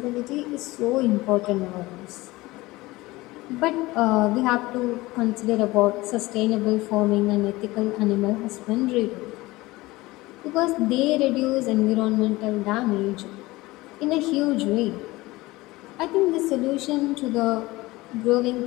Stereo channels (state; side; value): quieter; right; 20.1 dB